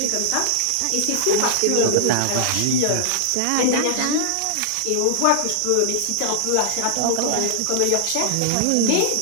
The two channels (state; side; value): different; both; correlation -0.01